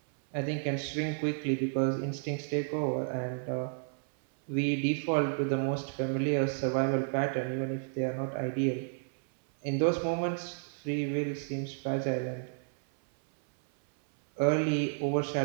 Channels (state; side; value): silent; left; 57 dB below the other